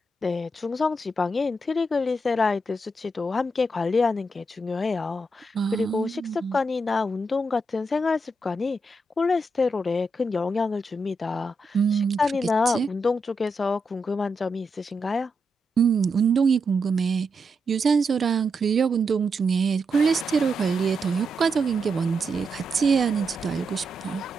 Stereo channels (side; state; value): both; normal; correlation 0.84